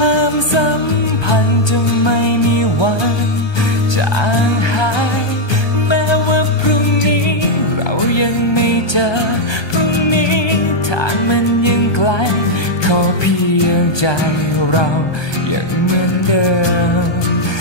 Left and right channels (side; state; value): right; late; 1.2 ms